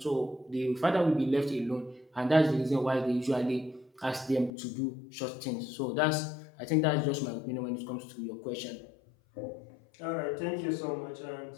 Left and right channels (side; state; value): right; drops out; at 4.5 s